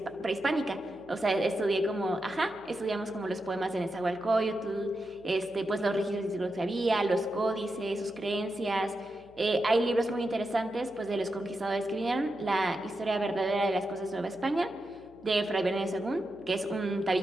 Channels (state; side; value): noise; left; hum, 26 dB below the sound